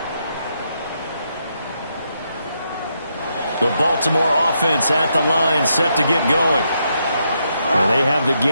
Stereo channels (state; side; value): inverted; both; correlation -0.80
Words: The Baltimore offense at the line, set to get going. And they have the